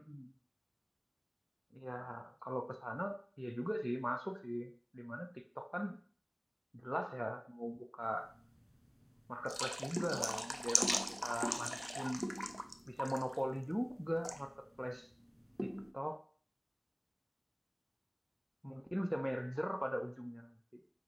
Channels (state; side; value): identical; both; correlation 1.00